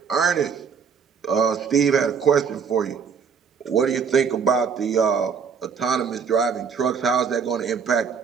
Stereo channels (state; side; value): quieter; left; 6.3 dB